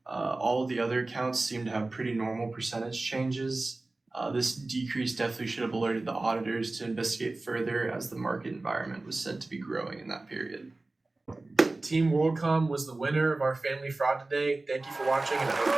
All of the other accounts seem to have pretty normal percentage changes. This decrease definitely should have alerted the auditors to investigate further, as the market environment was said to be growing in that period. Team WorldCom was the winner of our family fraud today. Thank you for watching, and I hope you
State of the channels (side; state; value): left; quieter; 3.1 dB